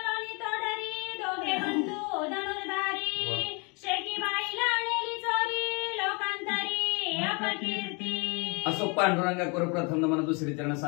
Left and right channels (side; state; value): right; quieter; 31.5 dB